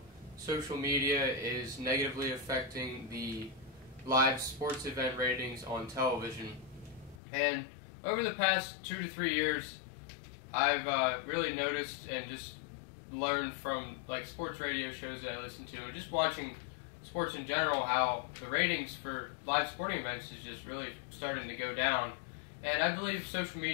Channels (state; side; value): drops out; right; at 7.2 s